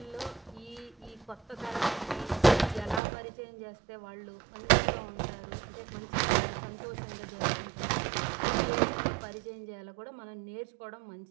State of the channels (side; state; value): left; drops out; at 3.0 s